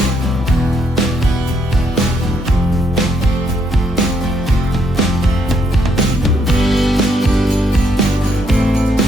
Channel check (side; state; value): both; normal; correlation 0.73